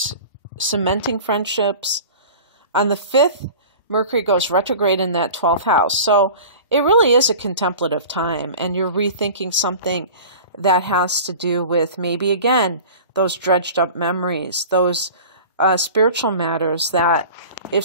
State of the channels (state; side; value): inverted; both; correlation -0.38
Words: cementing friendships. On the 5th, Mercury goes retrograde in that 12th house. So it really is a contemplative time, and you're rethinking something that has to do with maybe, again, those dredged up memories, those spiritual matters that if